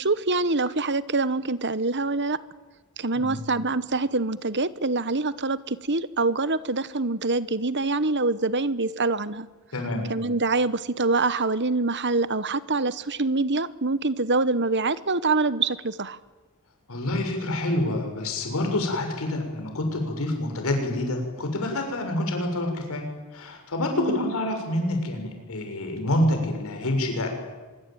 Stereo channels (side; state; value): both; normal; correlation 0.10